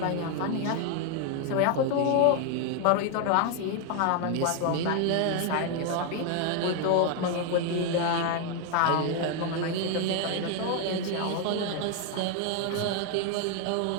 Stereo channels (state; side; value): different; both; correlation 0.01